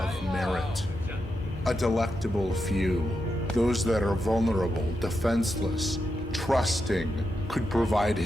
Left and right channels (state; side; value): normal; both; correlation 0.86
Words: merit. A delectable few, those that are vulnerable, defenseless, trusting, could provide